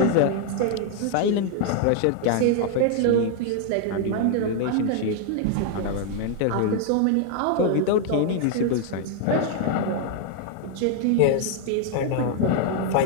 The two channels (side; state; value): both; different; correlation 0.00